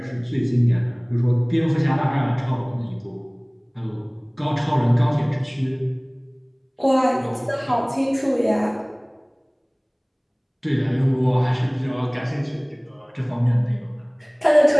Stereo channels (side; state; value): both; identical; correlation 1.00